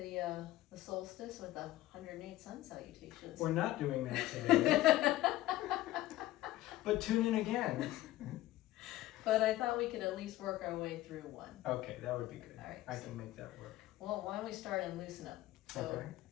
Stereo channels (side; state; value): right; quieter; 15.8 dB